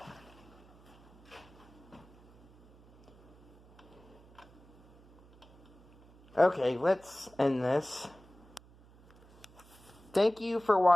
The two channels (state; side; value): noise; right; hum, 25 dB below the sound